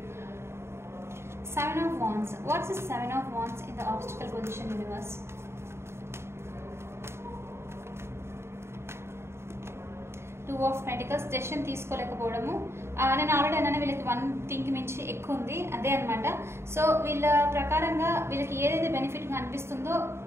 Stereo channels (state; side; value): late; left; 0.12 ms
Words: 7 of wands. What's the 7 of wands in the obstacle position universe? Two of Pentacles. Decision తీసుకోలేకపోవడము. నేను ఆల్రెడీ అన్నాను వీళ్ళకి 1 థింగ్ మించి ఎక్కువ ఉంది, అదే అనమాట. సో వీళ్ళ ప్రకారంగా వీళ్ళకి ఏదైతే బెనిఫిట్గా అనిపిస్తుందో,